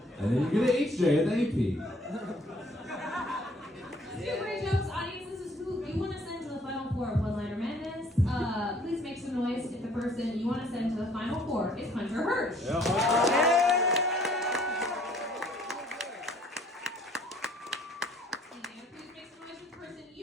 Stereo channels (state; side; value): normal; both; correlation 0.59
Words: And then you get an HJ at the AP. Super jokes, audience. This is who you want to send to the final four of One-Liner Madness. Please make some noise if the person you want to send to the final four is Hunter Hirsch. And please make some noise if the person